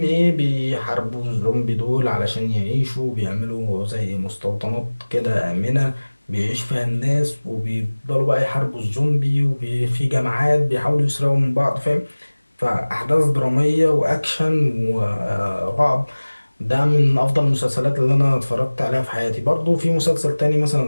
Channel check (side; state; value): both; inverted; correlation -1.00